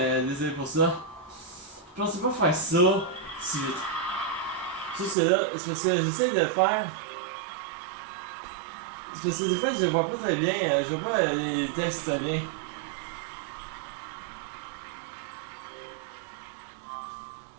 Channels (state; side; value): drops out; left; at 5.2 s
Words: désolé pour ça. Je pensais pas faire ça si vite. Ça c'est là, c'est parce que j'essaie de faire. C'est parce que des fois je vois pas très bien, je vois pas les textes très bien.